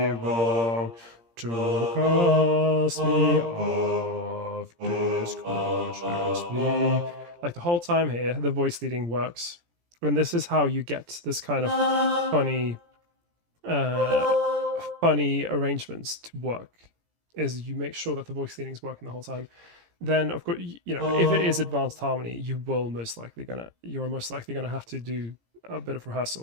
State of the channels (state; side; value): late; left; 17 ms